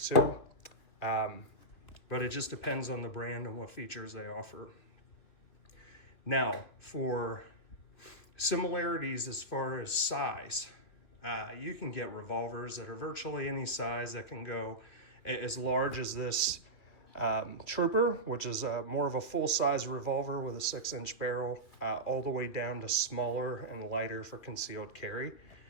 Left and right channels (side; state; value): right; late; 2.7 ms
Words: too. But it just depends on the brand and what features they offer. Now, for similarities as far as size, you can get revolvers that are virtually any size that can go as large as this Trooper, which is more of a full-size revolver with a 6-inch barrel, all the way down to smaller and lighter for concealed carry,